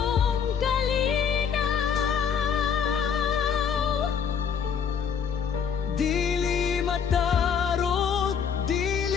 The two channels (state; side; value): quieter; right; 7.3 dB